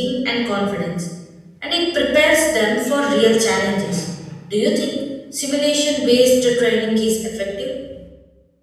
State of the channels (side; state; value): both; identical; correlation 1.00